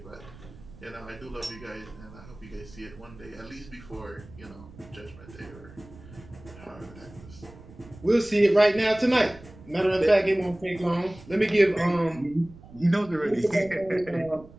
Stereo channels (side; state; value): right; noise; rumble, 20 dB below the sound